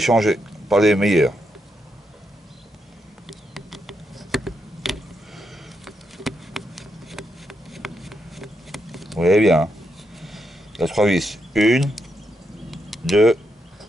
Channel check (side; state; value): both; normal; correlation 0.82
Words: par les meilleurs. Vous voyez bien, hein. Il y a 3 vis. 1, 2,